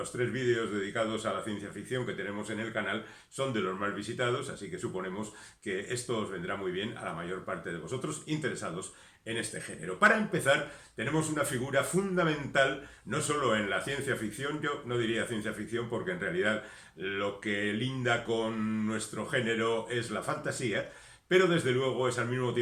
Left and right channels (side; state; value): both; identical; correlation 1.00